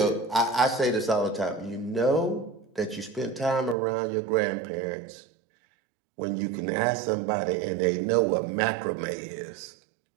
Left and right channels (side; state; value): left; drops out; at 3.8 s